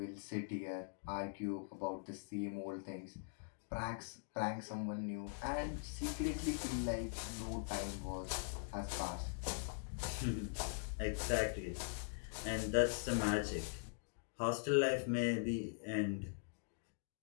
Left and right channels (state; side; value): silent; right; digital silence